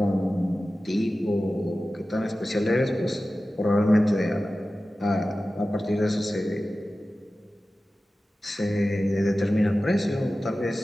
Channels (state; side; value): normal; both; correlation 0.95